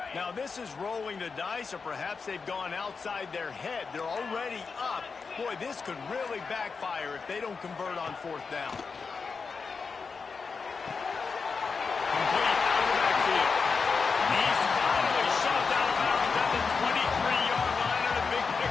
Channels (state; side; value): quieter; right; 5.0 dB